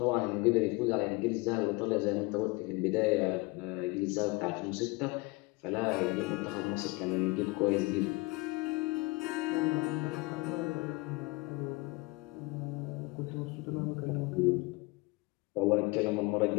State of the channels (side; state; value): right; quieter; 24.9 dB